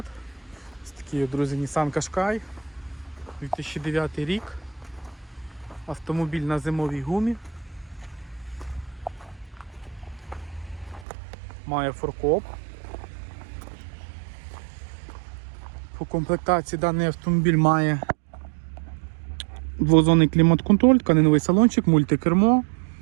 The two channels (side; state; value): left; drops out; at 11.1 s